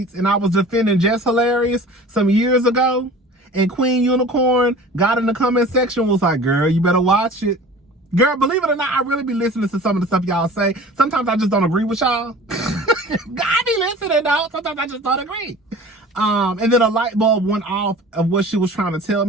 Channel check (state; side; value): normal; both; correlation 0.42